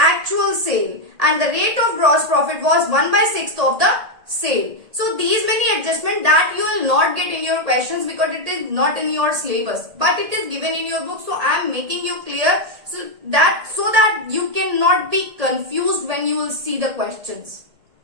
sale and the rate of gross profit was 1/6 of the sale. So these many adjustments that you will not get in your questions because it is not in your syllabus, but it is given in your book. So I am making you clear so that you cannot be confused when you will see the questions.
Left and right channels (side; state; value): left; late; 1.7 ms